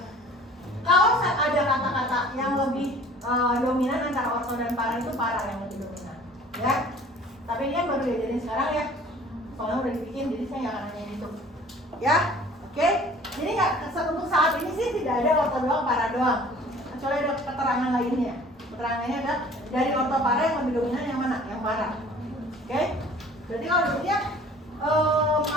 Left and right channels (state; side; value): normal; both; correlation 0.50